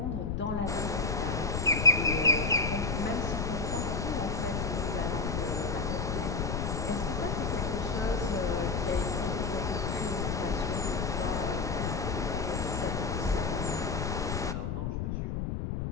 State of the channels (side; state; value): left; noise; rumble, 1 dB below the sound